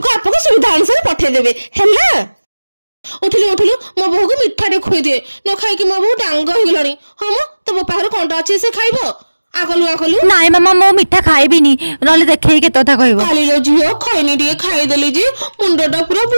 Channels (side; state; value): both; inverted; correlation -1.00